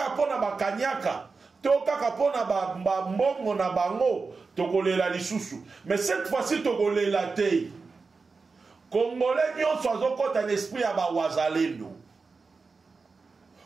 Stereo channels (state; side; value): quieter; left; 4.4 dB